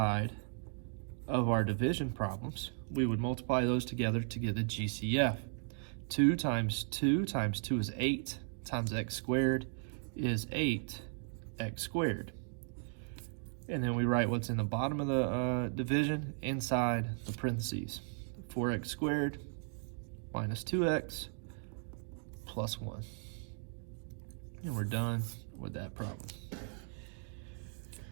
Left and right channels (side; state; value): left; silent; 53 dB below the other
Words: of our division problems, we would multiply those together to get the GCF. 2 times 2 times 2 is 8 times x squared is 8x squared. And then we write what's in the bottom of the division inside the parentheses. 4x squared minus 2x plus 1. And we're done with that problem.